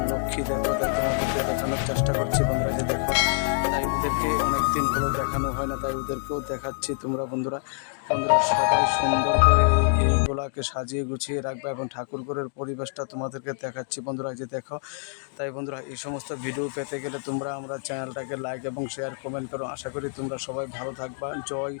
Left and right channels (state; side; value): silent; right; 61 dB below the other